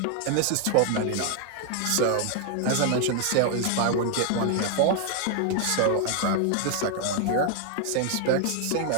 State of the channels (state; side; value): different; both; correlation 0.00